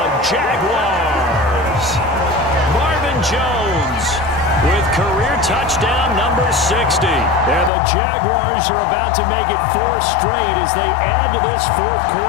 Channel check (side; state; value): right; drops out; at 7.7 s